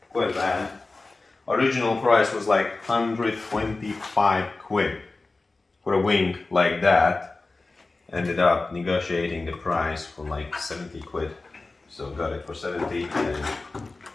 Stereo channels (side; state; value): right; quieter; 3.5 dB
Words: bad. Original price was like 125 quid for a wing like that. Ended up negotiating the price for like 70 quid. So got it for 70, and